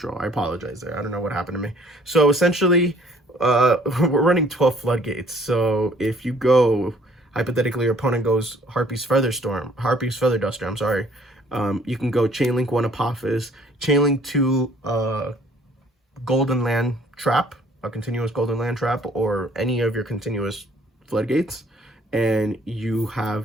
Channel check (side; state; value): both; normal; correlation 0.59